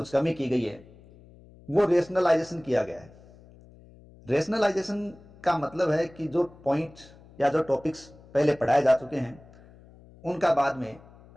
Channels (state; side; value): noise; left; hum, 24 dB below the sound